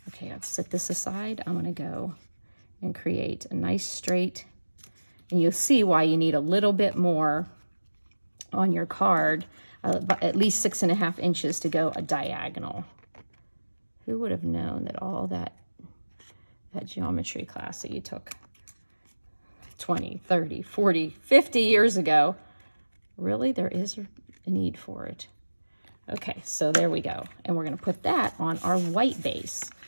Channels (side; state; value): both; inverted; correlation -1.00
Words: Okay, let's set this aside. I'm gonna go and create a nice straight, and you'll see why you need a little bit more on your card, at least 6.5 inches to go a diagonal. Who would have known that all that geometry class that you took 20, 30, 40, 50 years ago, really there is a need for it. Okay, so there we go. And we're gonna put that on our white base.